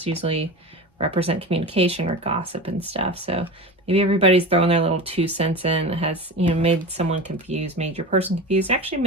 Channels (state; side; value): normal; both; correlation 0.29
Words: usually represent communication or gossip and stuff. So maybe everybody's throwing their little 2 cents in that has, you know, made someone confused, made your person confused, actually